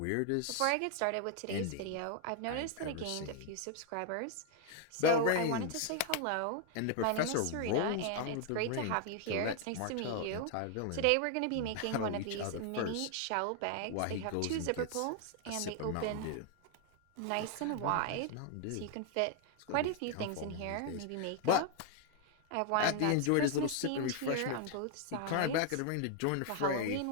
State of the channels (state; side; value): different; both; correlation 0.00